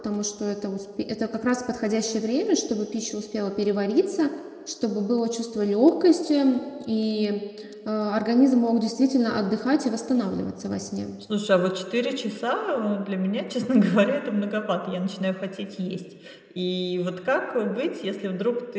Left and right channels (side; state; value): both; identical; correlation 1.00